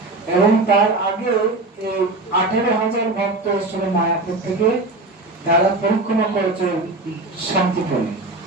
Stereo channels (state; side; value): quieter; left; 3.1 dB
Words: এবং তার আগে 18,000 ভক্ত এসেছিল মায়াপুর থেকে, তারা পরিক্রমা করেছে শান্তিপুরে,